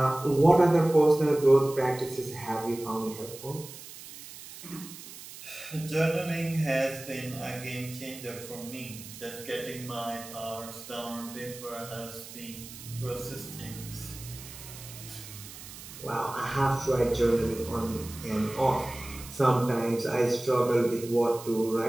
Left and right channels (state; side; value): noise; right; hiss, 14 dB below the sound